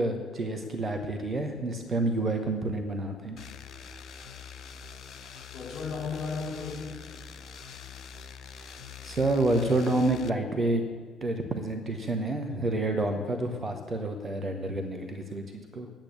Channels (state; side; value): normal; both; correlation 0.60